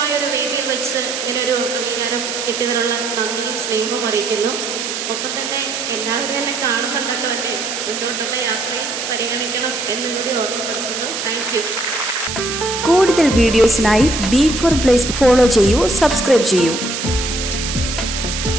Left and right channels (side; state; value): right; noise; hiss, 4 dB below the sound